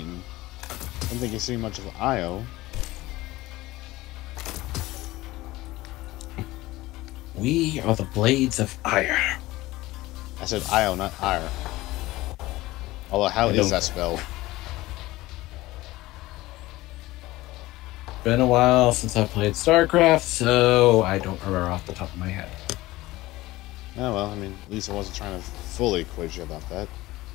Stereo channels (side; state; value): right; quieter; 18.4 dB